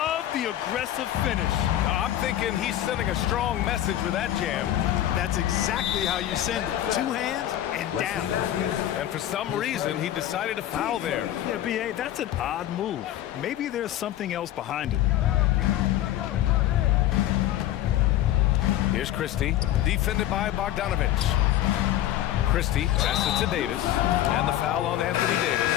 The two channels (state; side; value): quieter; right; 12.8 dB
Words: the aggressive finish. I'm thinking he's sending a strong message with that jam. That's exactly how you send it. 2 hands and down. And for some reason, he decided to foul there. Yeah, B.A., that's an odd move. Maybe there's something else behind it. Here's Christie, defended by Bogdanovich. Christie passes it to Davis, and the foul on Anthony